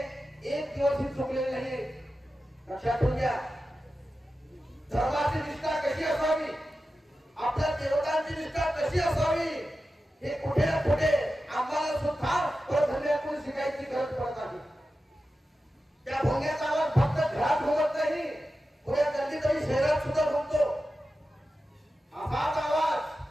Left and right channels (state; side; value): normal; both; correlation 0.92